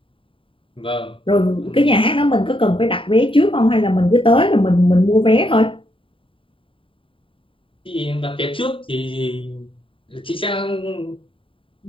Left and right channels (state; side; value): late; right; 0.25 ms